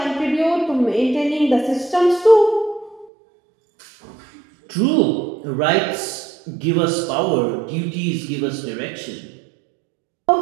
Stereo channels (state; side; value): drops out; left; at 3.1 s